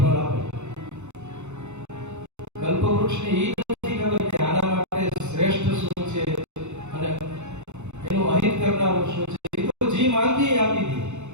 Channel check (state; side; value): late; left; 0.83 ms